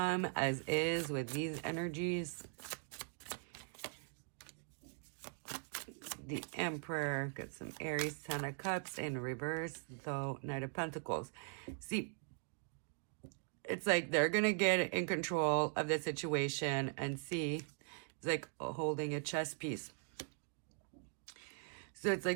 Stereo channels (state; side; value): silent; left; 50 dB below the other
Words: as is with these energies, the Emperor, got some Aries, 10 of Cups in reverse, though Knight of Pentacles. See, it's like they're going to get in control of the situation and see, it's like holding a chess piece. So it's